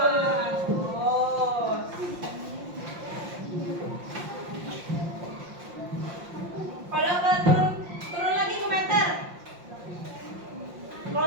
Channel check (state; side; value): late; left; 5.7 ms